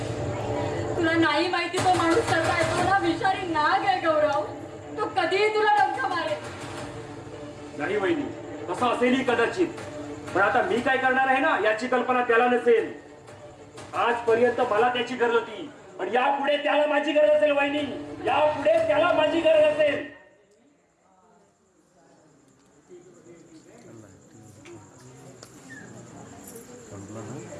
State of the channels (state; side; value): identical; both; correlation 1.00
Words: तुला नाही माहिती तो माणूस कसा आहे. तुला विषारी नाग आहे गौरव. तो कधीही तुला डंख मारेल. नाही वहिनी, तसं असेलही कदाचित. पण आता मी काय करणार आहे ना याची कल्पना त्याला नसेल. आजपर्यंत मला त्याची गरज होती पण यापुढे त्याला माझी गरज असेल. वहिनी यापुढे त्याला माझी गरज असेल.